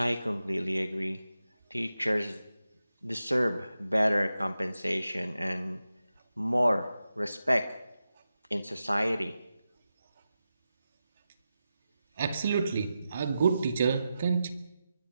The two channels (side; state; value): both; inverted; correlation -0.91